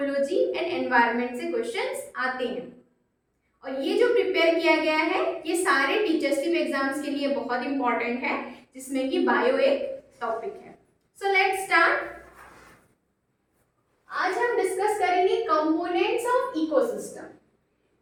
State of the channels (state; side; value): identical; both; correlation 1.00